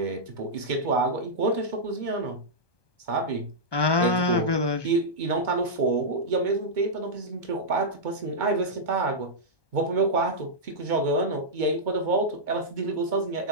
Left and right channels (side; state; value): right; late; 1.2 ms